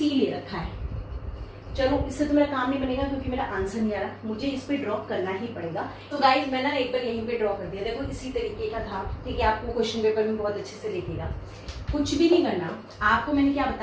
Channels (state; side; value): identical; both; correlation 1.00